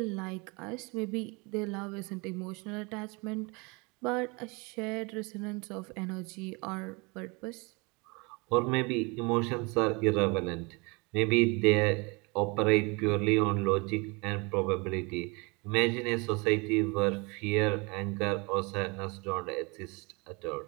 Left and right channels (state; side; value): quieter; left; 28.7 dB